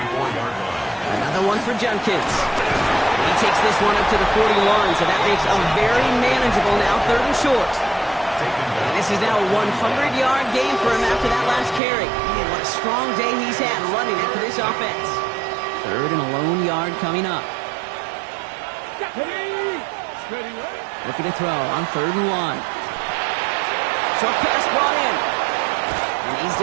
line. Another one for Judkins. He takes this one up to the 41, so that makes a very manageable now 3rd and short. And this is now a 100-yard game for him after that last carry. Man, what a strong day he's had running it for this offense. 3rd and a lone yard coming up. Ready. Looking to throw on 3rd and 1. Short pass brought in. And he's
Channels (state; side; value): drops out; left; at 11.8 s